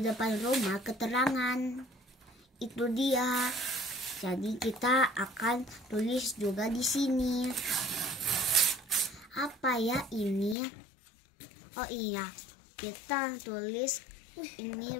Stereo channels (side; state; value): right; drops out; at 10.6 s